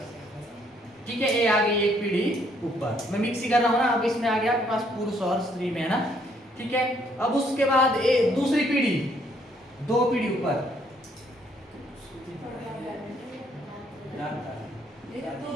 ठीक है, ये आ गई एक पीढ़ी ऊपर, मैं मिक्स ही कर रहा हूँ ना। अब इसमें आ गया आपके पास पुरुष और स्त्री में, है ना, ठीक है। अब उसके बाद दूसरी पीढ़ी, 2 पीढ़ी ऊपर,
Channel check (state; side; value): normal; both; correlation 0.67